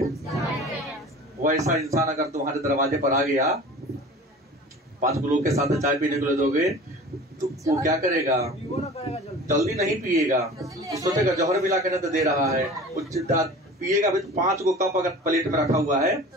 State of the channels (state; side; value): normal; both; correlation 0.40